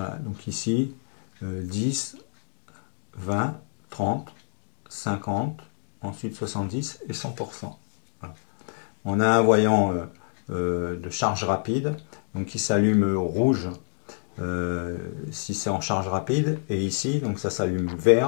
donc ici, 10, 20, 30, 50, ensuite 70 et 100%. Voilà. On a un voyant de charge rapide, donc qui s'allume rouge si c'est en charge rapide, et ici, donc ça s'allume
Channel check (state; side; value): silent; right; digital silence